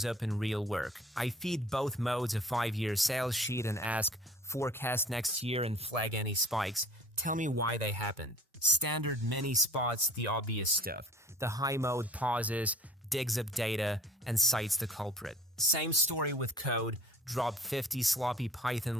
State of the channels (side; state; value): both; normal; correlation 0.46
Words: up in real work. I feed both modes a 5-year sales sheet and ask, forecast next year and flag any spikes. Tell me why they happened. Standard Mini spots the obvious stuff. The high mode pauses, digs up data, and cites the culprit. Same story with code. Drop 50 sloppy